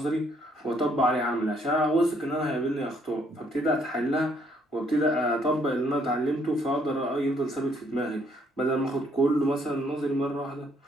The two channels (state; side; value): normal; both; correlation 0.68